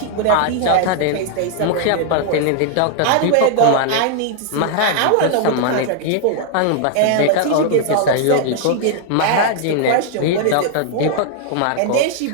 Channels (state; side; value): different; both; correlation 0.00